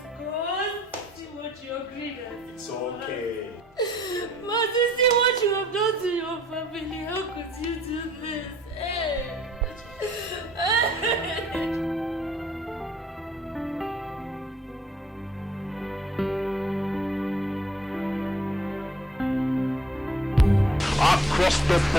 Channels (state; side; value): normal; both; correlation 0.60